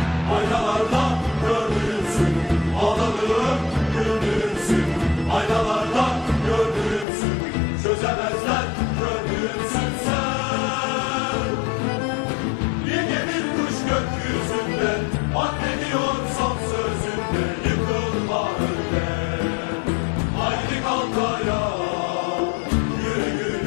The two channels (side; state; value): right; drops out; at 7.1 s